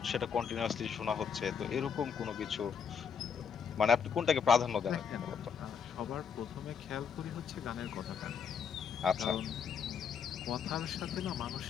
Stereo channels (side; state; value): right; quieter; 6.9 dB